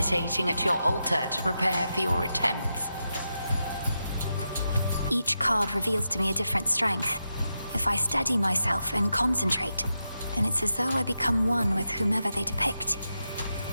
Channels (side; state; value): both; inverted; correlation -0.88